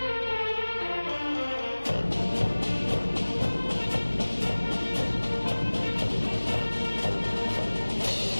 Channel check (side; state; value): both; inverted; correlation -1.00